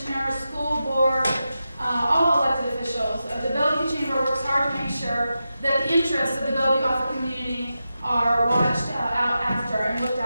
school board, all elected officials. The Bellevue Chamber works hard to make sure that the interests of the Bellevue Offutt community are watched out after and looked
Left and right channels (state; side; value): inverted; both; correlation -0.91